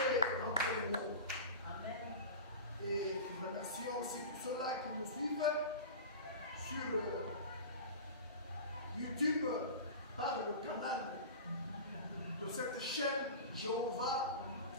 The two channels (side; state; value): both; inverted; correlation -0.31